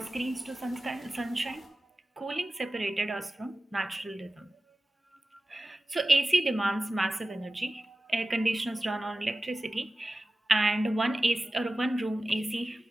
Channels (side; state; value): both; normal; correlation 0.96